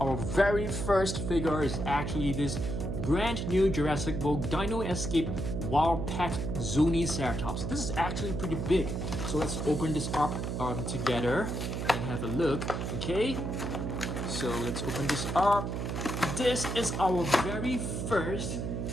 Our very first figure is actually this brand new Jurassic World Dino Escape Wild Pack Ceratops. This is actually pretty big, so let's open this up together and have a look. Okay, so let's open this up. This is our very first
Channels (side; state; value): right; noise; hum, 3 dB below the sound